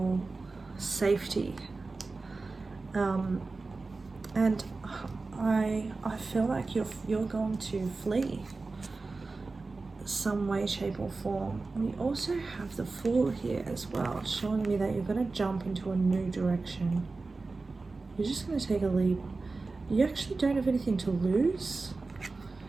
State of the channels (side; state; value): left; quieter; 3.7 dB